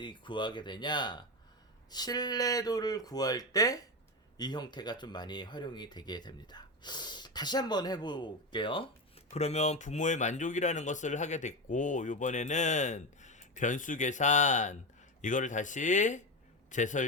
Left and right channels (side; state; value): both; normal; correlation 0.16